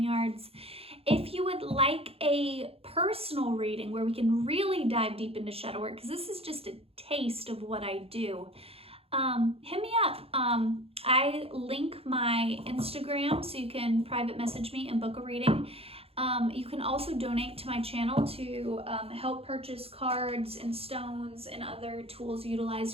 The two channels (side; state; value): left; late; 0.28 ms